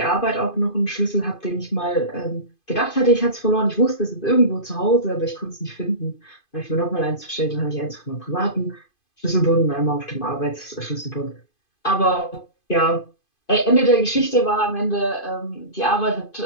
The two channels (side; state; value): right; late; 2.5 ms